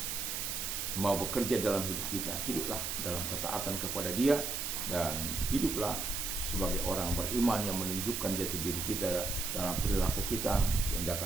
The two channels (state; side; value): noise; right; hiss, 2 dB below the sound